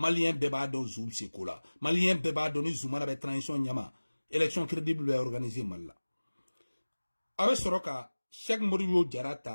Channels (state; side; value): inverted; both; correlation -1.00